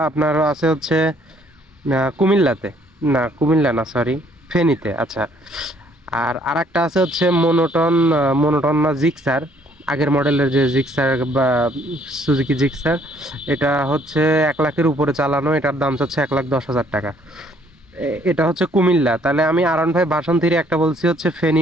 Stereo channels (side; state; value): both; normal; correlation 0.64